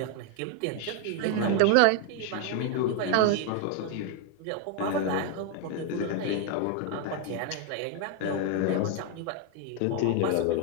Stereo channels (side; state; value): both; different; correlation 0.01